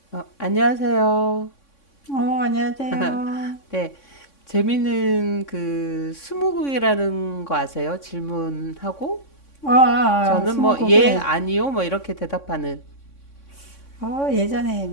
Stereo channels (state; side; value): late; right; 3.6 ms